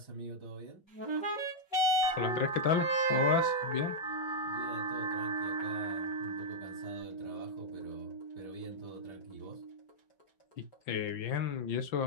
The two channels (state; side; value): late; right; 5.9 ms